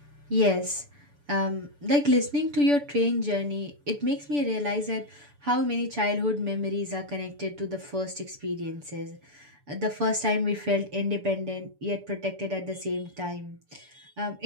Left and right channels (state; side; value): late; left; 6.9 ms